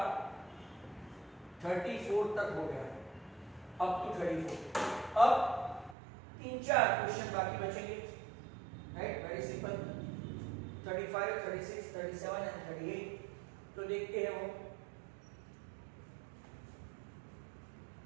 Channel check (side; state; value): left; drops out; at 6.0 s